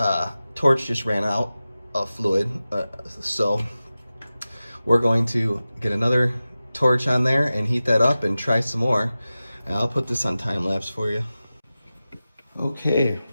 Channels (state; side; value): inverted; both; correlation -0.95